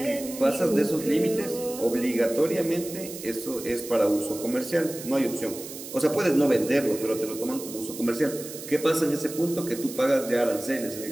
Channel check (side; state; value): right; noise; hiss, 12 dB below the sound